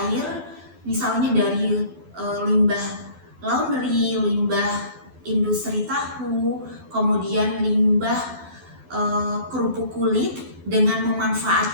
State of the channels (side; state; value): left; late; 12 ms